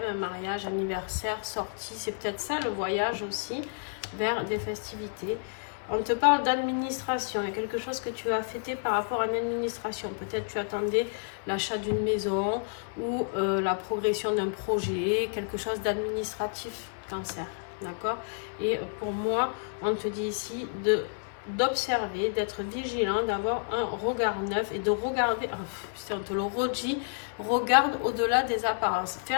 un mariage, anniversaire, sortie. C'est peut-être ça le voyage aussi vers des festivités. On te parle d'administration. Il y a quelque chose que tu as fêté par rapport à une administration. Peut-être tu attendais l'achat d'une maison ou la progression d'un projet, quelque chose d'administratif, Cancer. D'accord? Et pour moi, on te dit ici d'observer, d'être vigilant, d'avoir un regard neuf et de regarder, on te le redit, regarde au-delà des apparences. Fais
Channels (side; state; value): right; silent; digital silence